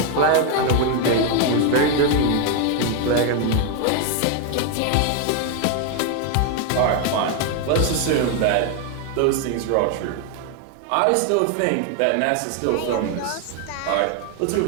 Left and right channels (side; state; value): both; different; correlation 0.01